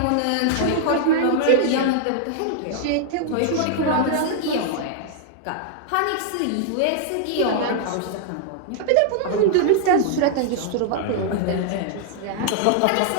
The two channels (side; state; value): both; different; correlation -0.01